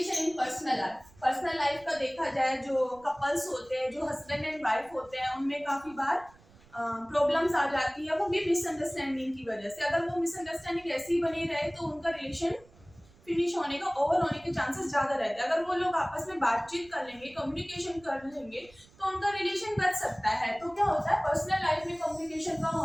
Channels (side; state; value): right; noise; rumble, 26 dB below the sound